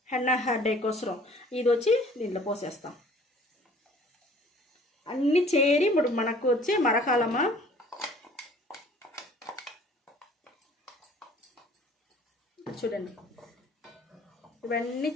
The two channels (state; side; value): normal; both; correlation 0.53